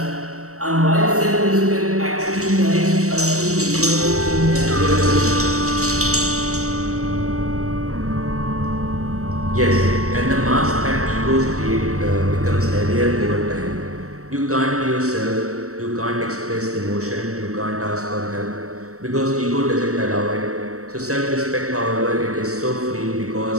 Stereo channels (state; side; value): late; left; 0.65 ms